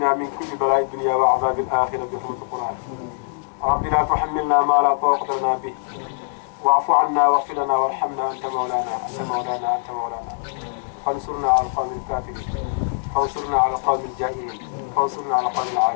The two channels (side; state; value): right; silent; digital silence